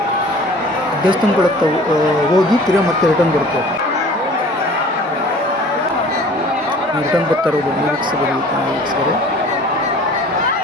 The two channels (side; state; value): both; normal; correlation 0.47